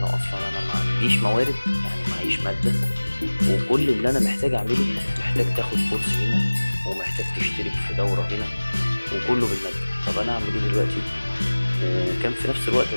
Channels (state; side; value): inverted; both; correlation -1.00